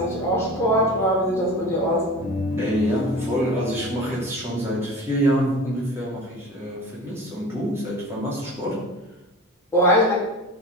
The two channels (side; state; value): both; normal; correlation 0.35